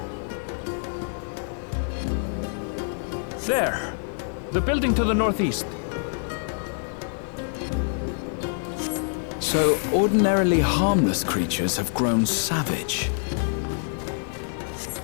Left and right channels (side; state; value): right; silent; digital silence